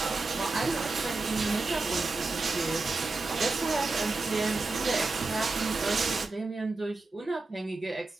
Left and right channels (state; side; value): quieter; left; 3.5 dB